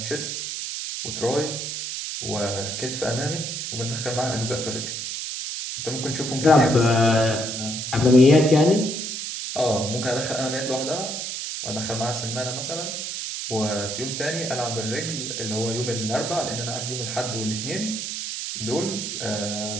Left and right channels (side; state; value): right; noise; hiss, 4 dB below the sound